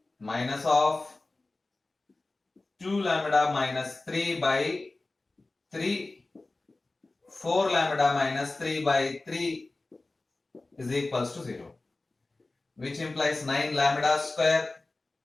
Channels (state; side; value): quieter; right; 3.2 dB